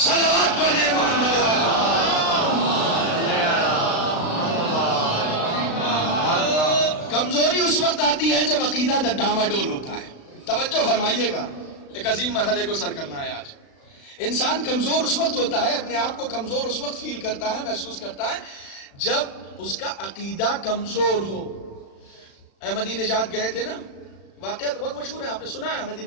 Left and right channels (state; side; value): late; right; 36 ms